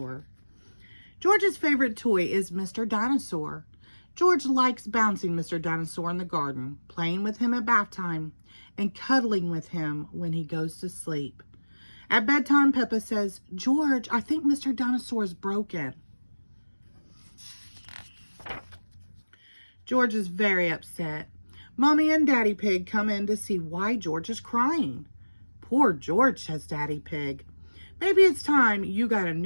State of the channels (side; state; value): both; inverted; correlation -1.00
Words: George's favorite toy is Mr. Dinosaur. George likes bouncing Mr. Dinosaur in the garden, playing with him at bath time, and cuddling with him when he goes to sleep. At bedtime, Peppa says, "George, I think Mr. Dinosaur is broken." George is very upset. Mommy and Daddy Pig come in to see why George is crying. "Poor George," says Daddy Pig. "Maybe it's time you got a